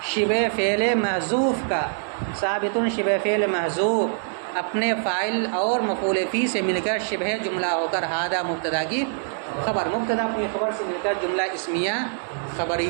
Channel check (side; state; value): left; silent; digital silence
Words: شبہ فعل محذوف کا، ثابت شبہ فعل محذوف اپنے فاعل اور مفعول فی سے مل کر شبہ جملہ ہو کر ھذا مبتدا کی خبر، مبتدا اپنی خبر سے مل کر جملہ اسمیہ